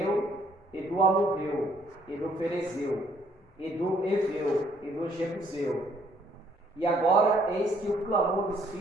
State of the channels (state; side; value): normal; both; correlation 0.65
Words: e do Amorreu, e do Ferezeu, e do Eveu, e do Jebuseu. E agora eis que o clamor dos